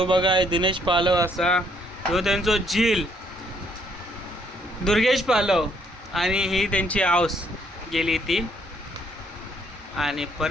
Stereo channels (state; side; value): normal; both; correlation 0.68